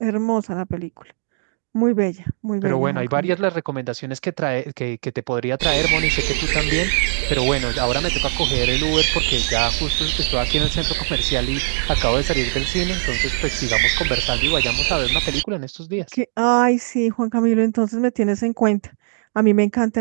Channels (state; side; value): silent; left; digital silence